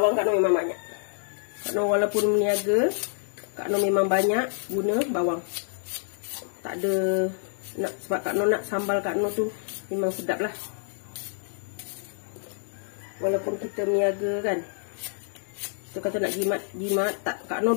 Kak Noh memang banyak. Kak Noh walaupun meniaga, Kak Noh memang banyak guna bawang. Tak ada sebab Kak Noh nak sambal Kak Noh tu memang sedap lah. Walaupun kita meniaga kan, kita kata nak jimat tak. Kak Noh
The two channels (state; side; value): silent; right; digital silence